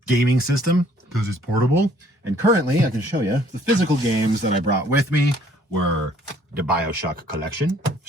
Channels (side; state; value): both; normal; correlation 0.60